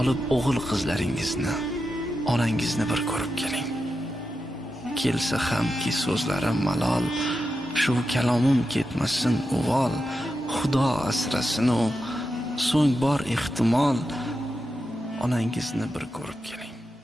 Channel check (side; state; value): both; normal; correlation 0.89